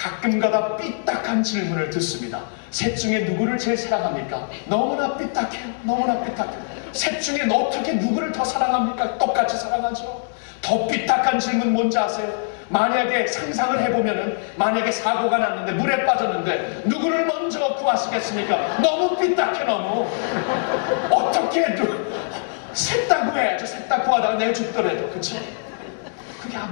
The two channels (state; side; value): silent; right; digital silence